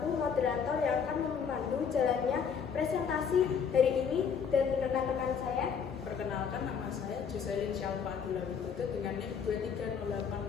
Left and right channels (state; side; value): quieter; right; 6.7 dB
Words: moderator yang akan memandu jalannya presentasi hari ini, dan rekan-rekan saya. Perkenalkan, nama saya Joselin Syalfa Abdullah Widodo dengan NIM